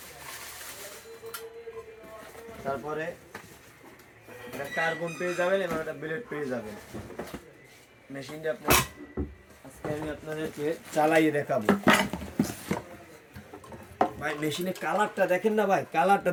তারপরে একটা কার্বন পেয়ে যাবেন এবং একটা ব্লেড পেয়ে যাবেন। মেশিনটা আজকে আমি আপনাদেরকে চালাইয়ে দেখাবো। ভাই মেশিনের কালারটা দেখেন না ভাই, কালারটা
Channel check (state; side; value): identical; both; correlation 1.00